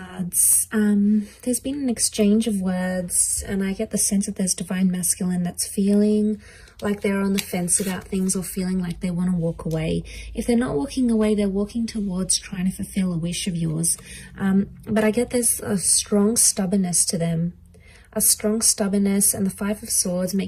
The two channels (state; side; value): identical; both; correlation 1.00